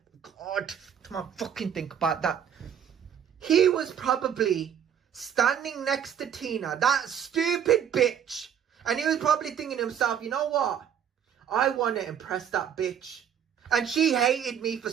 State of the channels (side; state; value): left; quieter; 8.8 dB